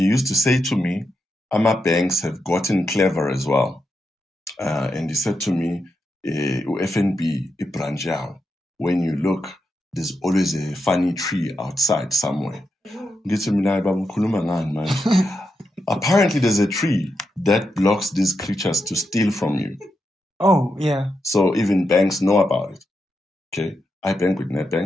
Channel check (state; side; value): normal; both; correlation 0.86